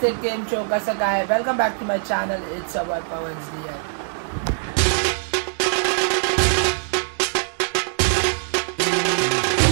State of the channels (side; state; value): left; silent; digital silence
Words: केम शो कसं काय welcome back to my channel it's about Pawan's दिया.